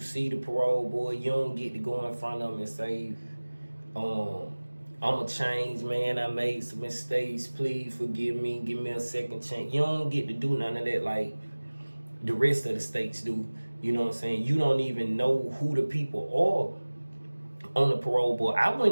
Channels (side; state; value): both; inverted; correlation -1.00